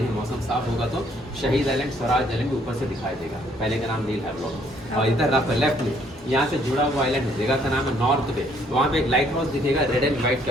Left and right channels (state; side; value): normal; both; correlation 0.65